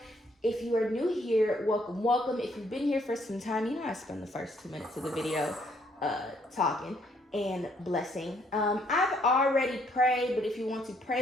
If you are new here, welcome, welcome. If you've been here for some time, you know I spend the first 2 minutes of the video talking and blessing. I've already prayed, but if you want to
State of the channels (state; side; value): normal; both; correlation 0.68